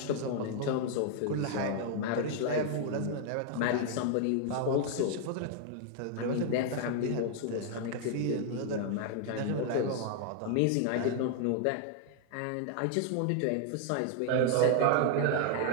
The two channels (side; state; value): both; different; correlation 0.00